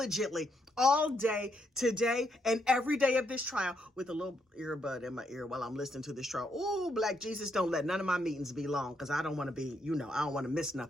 all day today and every day of this trial with a little earbud in my ear while I'm listening to this trial. Oh, Black Jesus, don't let none of my meetings be long because I don't want to be, I don't want to miss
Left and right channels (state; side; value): normal; both; correlation 0.77